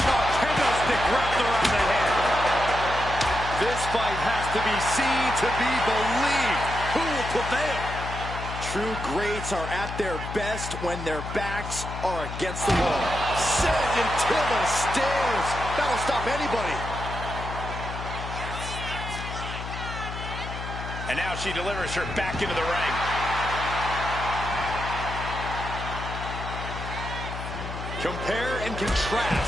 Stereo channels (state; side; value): noise; left; hum, 7 dB below the sound